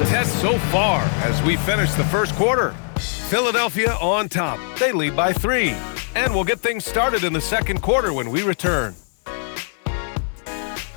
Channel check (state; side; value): silent; right; 56 dB below the other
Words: so far as we finish the first quarter. Philadelphia on top. They lead by 3. And we'll get things started in the second quarter when we return.